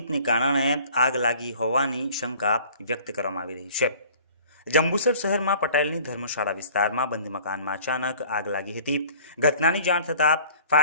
કારણે આગ લાગી હોવાની શંકા વ્યક્ત કરવામાં આવી રહી છે। જંબુસર શહેરમાં પટેલની ધર્મશાળા વિસ્તારમાં બંધ મકાનમાં અચાનક આગ લાગી હતી। ઘટનાની જાણ થતાં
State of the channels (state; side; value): inverted; both; correlation -0.50